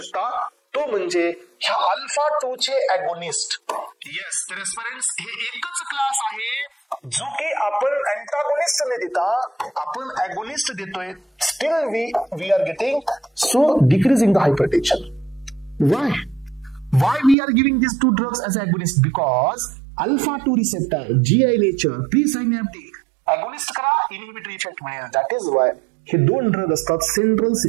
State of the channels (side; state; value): left; drops out; at 17.4 s